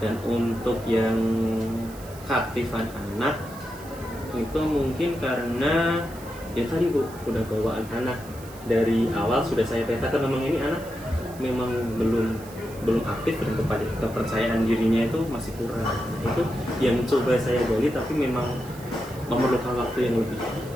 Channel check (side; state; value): right; noise; hiss, 20 dB below the sound